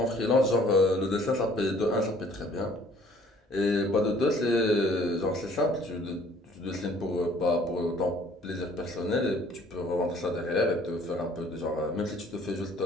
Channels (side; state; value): both; normal; correlation 0.57